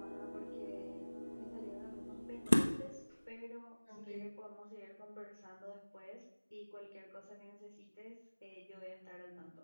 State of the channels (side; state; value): both; inverted; correlation -1.00